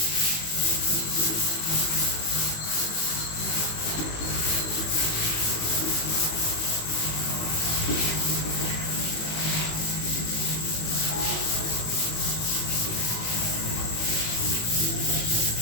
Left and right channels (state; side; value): late; right; 18 ms